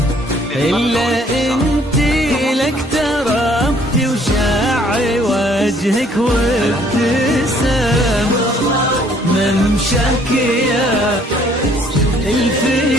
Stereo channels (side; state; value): both; normal; correlation 0.61